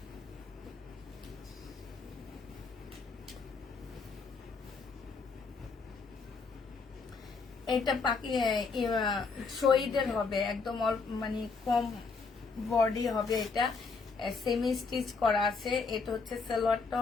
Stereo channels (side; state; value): right; quieter; 4.6 dB